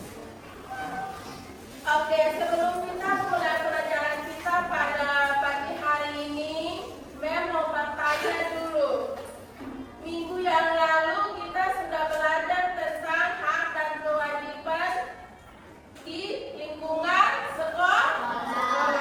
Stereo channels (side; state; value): both; identical; correlation 1.00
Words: Oke, sebelum kita mulai pelajaran kita pada pagi hari ini, Mem mau bertanya dulu. Minggu yang lalu kita sudah belajar tentang hak dan kewajiban